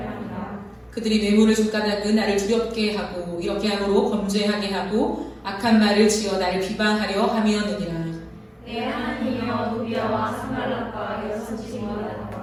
그들이 뇌물을 줬다는 나를 두렵게 하고 이렇게 함으로 범죄하게 하고 악한 말을 지어 나를 비방하려 함이었느니라. 내 하나님이여 도비야와 산발랏과 여섯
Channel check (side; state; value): both; identical; correlation 1.00